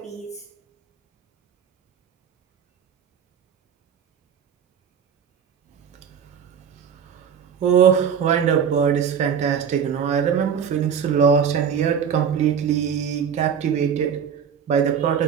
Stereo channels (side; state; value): left; quieter; 7.6 dB